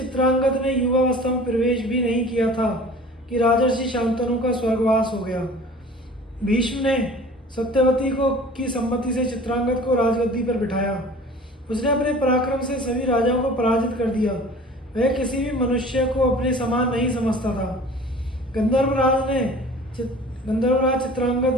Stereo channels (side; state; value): both; normal; correlation 0.44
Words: ने युवावस्था में प्रवेश भी नहीं किया था कि राजर्षि शांतनु का स्वर्गवास हो गया। भीष्म ने सत्यवती को की सम्मति से चित्रांगद को राजगद्दी पर बिठाया। उसने अपने पराक्रम से सभी राजाओं को पराजित कर दिया। वह किसी भी मनुष्य को अपने समान नहीं समझता था। गंधर्वराज